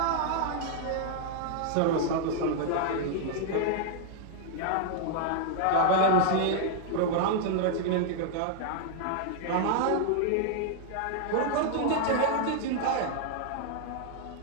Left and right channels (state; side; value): different; both; correlation 0.00